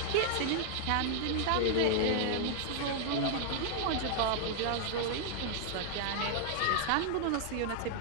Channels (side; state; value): both; different; correlation 0.00